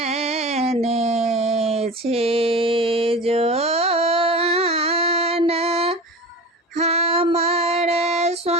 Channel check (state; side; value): normal; both; correlation 0.32